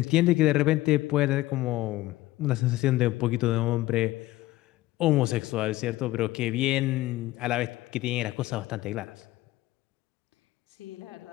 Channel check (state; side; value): quieter; right; 17.2 dB